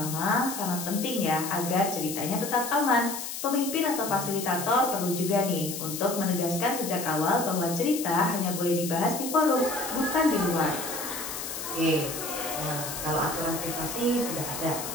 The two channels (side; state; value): left; noise; hiss, 6 dB below the sound